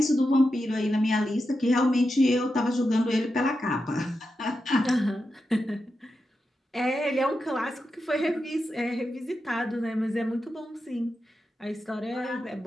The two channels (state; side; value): normal; both; correlation 0.89